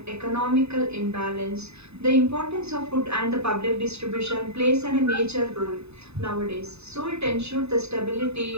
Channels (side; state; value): left; late; 0.79 ms